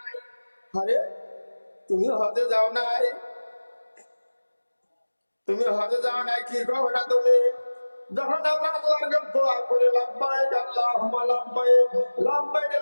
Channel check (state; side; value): inverted; both; correlation -1.00